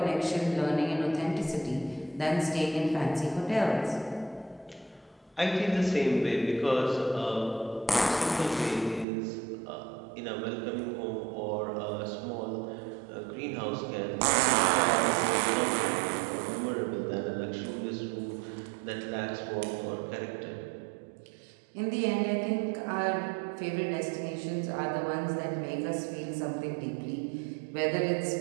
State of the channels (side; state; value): left; drops out; at 9.1 s